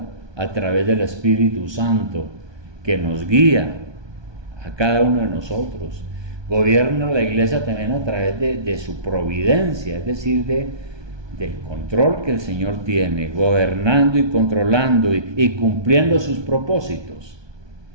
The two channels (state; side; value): late; left; 1.2 ms